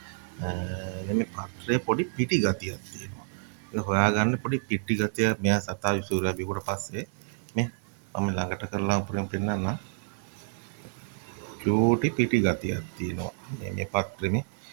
මේ පත්‍රයේ පොඩි පිටි ගතියක් තියෙනවා. ඒක හොයාගන්න පොඩි පිටි ගතිය මෙයා සතා විසූරා බිව්වට පස්සේ මේ මම ළඟට කරලා පෙන්නන්නම්. චූටි පිටි ගතියක් තියෙනවා මේ පත්‍රෙමේ.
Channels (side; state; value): left; silent; 59 dB below the other